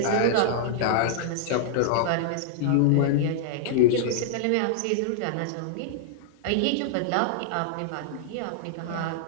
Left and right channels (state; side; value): different; both; correlation -0.01